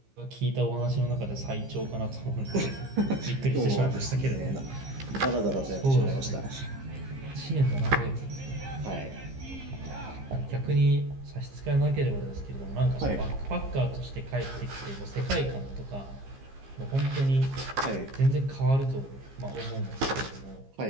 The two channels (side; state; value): left; late; 15 ms